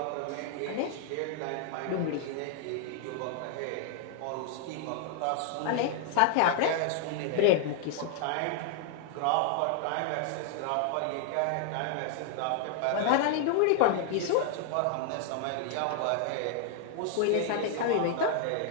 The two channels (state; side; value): different; both; correlation 0.00